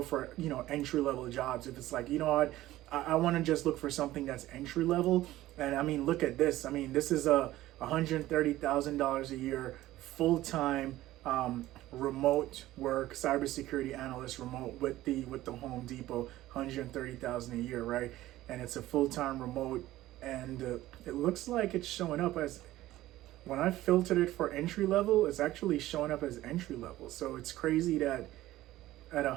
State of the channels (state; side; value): quieter; left; 15.7 dB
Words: for, entry-level jobs. If it's like, you know what, I want to just look for something that's entry-level. And I mean, look at this. I mean, this is a $130,000 a year, full-time, remote work, cybersecurity analyst, remote with the Home Depot, 130,000 a year, right? And it's a full-time remote, and it looks like it's showing up as, when I filtered it for entry level, it's actually showing up as entry level. So it's crazy that at